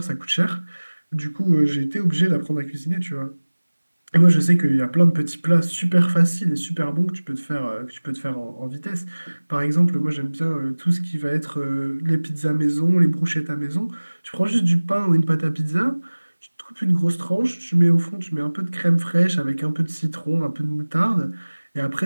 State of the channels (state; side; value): inverted; both; correlation -1.00